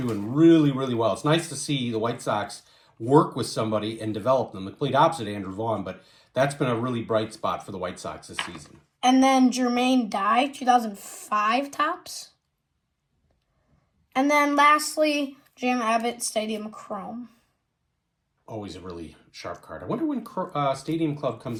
really, really well. It's nice to see the White Sox work with somebody and develop them. The complete opposite of Andrew Vaughn, but that's been a really bright spot for the White Sox this season. And then Jermaine Dye, 2005 tops. And then lastly, Jim Abbott, Stadium Chrome. Always a really sharp card. I wonder when Stadium Club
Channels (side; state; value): both; identical; correlation 1.00